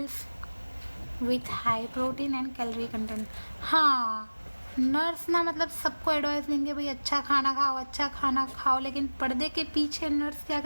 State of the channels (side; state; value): both; inverted; correlation -1.00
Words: with high protein and calorie content. हाँ, नर्स ना मतलब सबको एडवाइस देंगे भाई अच्छा खाना खाओ, अच्छा खाना खाओ, लेकिन पर्दे के पीछे नर्स क्या